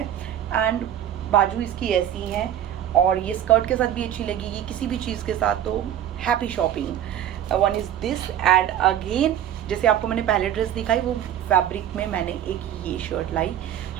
एंड बाजू इसकी ऐसी है, और ये स्कर्ट के साथ भी अच्छी लगेगी, किसी भी चीज़ के साथ, तो happy shopping. 1 is this. And again जैसे आपको मैंने पहले ड्रेस दिखाई, वो फैब्रिक में मैंने एक ये शर्ट लाई,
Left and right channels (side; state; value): left; quieter; 10.8 dB